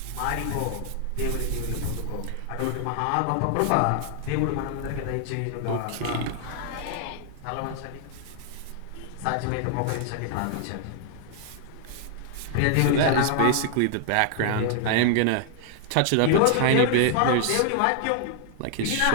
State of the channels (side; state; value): both; different; correlation 0.00